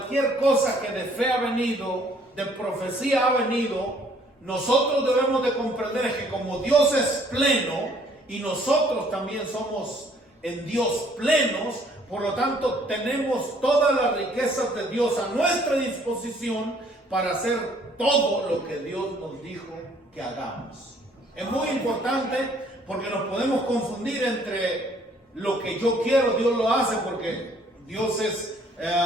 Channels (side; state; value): both; normal; correlation 0.61